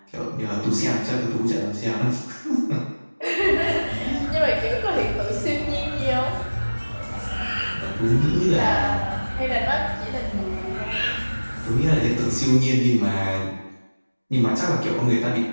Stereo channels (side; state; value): both; inverted; correlation -1.00